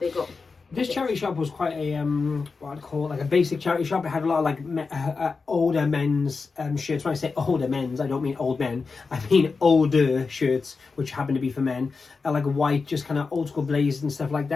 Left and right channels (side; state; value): right; quieter; 4.5 dB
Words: got. This charity shop was quite a what I'd call like a basic charity shop. It had a lot of like older men's shirts. When I say older men's, I don't mean old men. I mean older shirts, which happen to be for men. Like white, just kind of old school blazers and stuff like